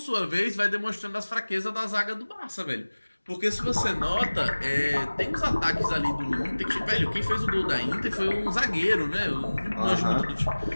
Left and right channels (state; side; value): inverted; both; correlation -1.00